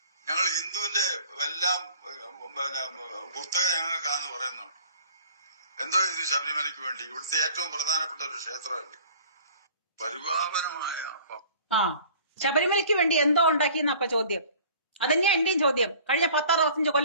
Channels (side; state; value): both; inverted; correlation -0.48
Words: ഞങ്ങൾ ഹിന്ദുവിന്റെ എല്ലാം പുസ്തകം ഞങ്ങൾക്കാന്ന് പറയുന്നുണ്ട്. എന്തോ ഇത് ശബരിമലയ്ക്ക് വേണ്ടി ഇവിടുത്തെ ഏറ്റവും പ്രധാനപ്പെട്ട ഒരു ക്ഷേത്രമല്ലേ, പരിപാവനമായ. ശബരിമലയ്ക്ക് വേണ്ടി എന്തോ ഉണ്ടാക്കിയെന്ന അപ്പൊ ചോദ്യം. അതന്നെയാ എന്റെയും ചോദ്യം. കഴിഞ്ഞ 10-65